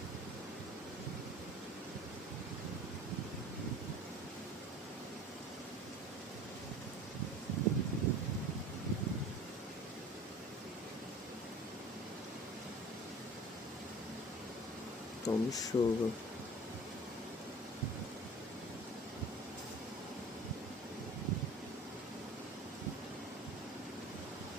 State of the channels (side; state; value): both; normal; correlation 0.42